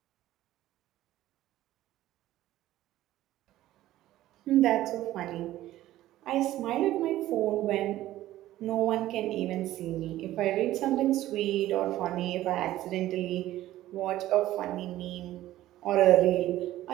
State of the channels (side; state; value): left; quieter; 14.6 dB